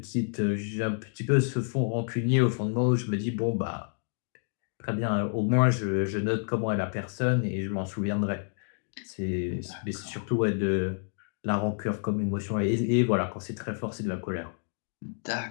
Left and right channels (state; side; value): silent; right; 59 dB below the other